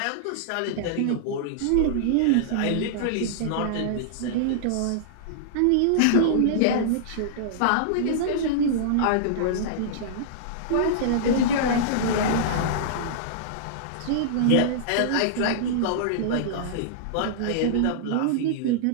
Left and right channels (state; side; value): different; both; correlation -0.02